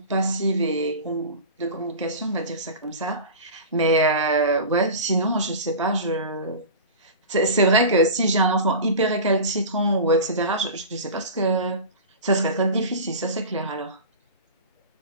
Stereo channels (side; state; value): both; inverted; correlation -0.32